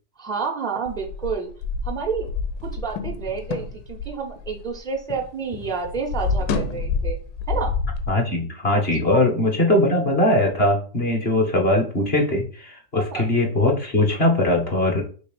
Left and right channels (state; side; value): late; right; 2.9 ms